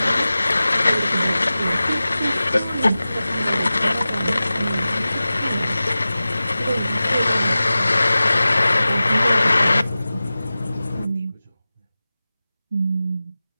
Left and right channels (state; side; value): inverted; both; correlation -0.96